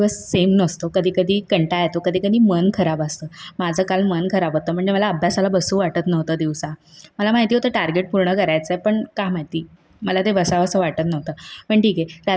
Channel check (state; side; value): identical; both; correlation 1.00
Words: सेम नसतो. कधी-कधी कंटाळा येतो, कधी-कधी मन खराब असतं. माझं काल मन खराब होतं, म्हणजे मला अभ्यासाला बसू वाटत नव्हतं दिवसा. मला माहिती होतं टार्गेट पूर्ण करायचं आहे, पण का माहिती मला ते बसावंसं वाटत नव्हतं. पण ठीक आहे,